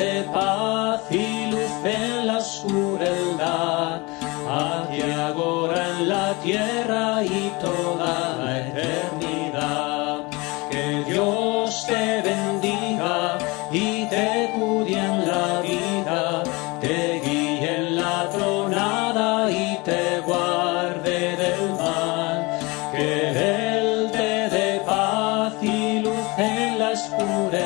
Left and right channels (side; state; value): right; quieter; 25.3 dB